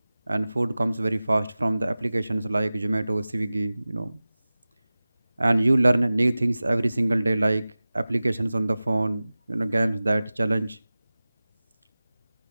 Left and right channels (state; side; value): inverted; both; correlation -0.97